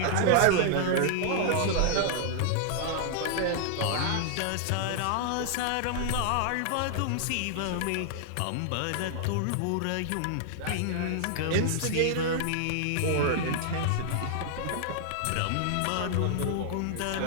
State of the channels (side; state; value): both; different; correlation -0.01